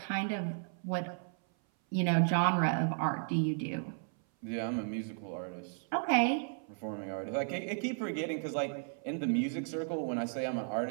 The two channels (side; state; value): left; silent; 55 dB below the other